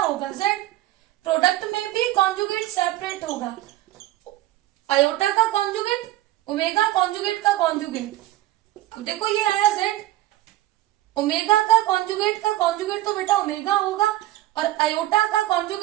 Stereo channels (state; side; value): quieter; left; 15.5 dB